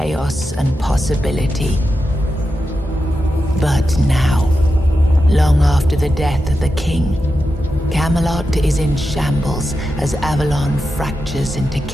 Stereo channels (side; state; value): both; normal; correlation 0.89